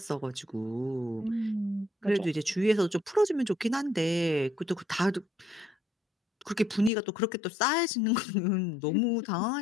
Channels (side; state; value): right; drops out; at 6.9 s